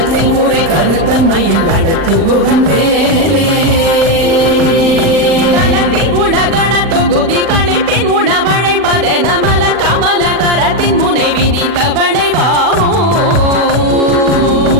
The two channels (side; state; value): left; late; 40 ms